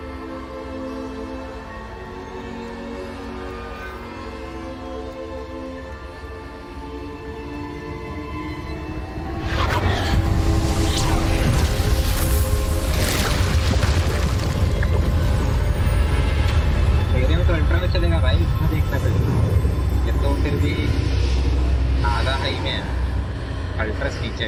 मेरे में तो ultra में चलेगा भाई इसमें देखता फिर ये तो फिर भी आधा हाई में है अल्ट्रा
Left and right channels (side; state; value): both; identical; correlation 1.00